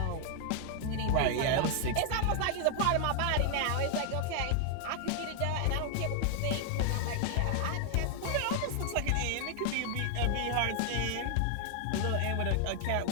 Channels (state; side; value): different; both; correlation 0.00